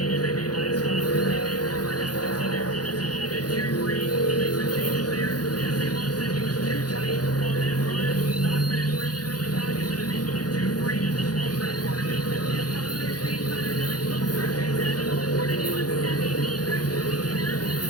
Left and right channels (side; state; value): right; late; 0.69 ms